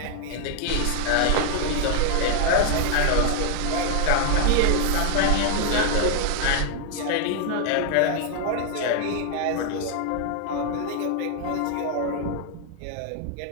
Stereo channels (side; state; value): both; different; correlation 0.00